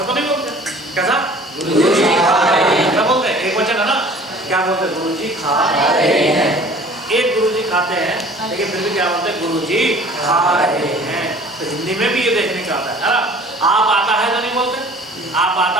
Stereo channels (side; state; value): both; normal; correlation 0.48